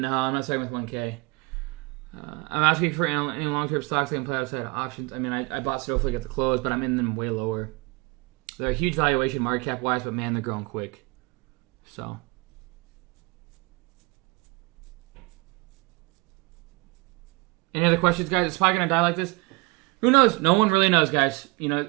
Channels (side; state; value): left; quieter; 26.0 dB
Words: I'm not starting with 1K. I'm asking for any long-term stocks I can play outside of options. I mean, I bought Snowflake at the close, but I'm in them way lower. They're a huge valuation market cap-wise, but man, they're growing quick. So... Any other questions, guys? Is SPY going to die like this? Who knows? No one really knows, guys.